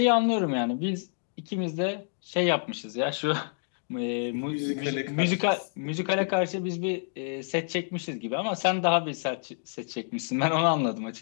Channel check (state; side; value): silent; right; digital silence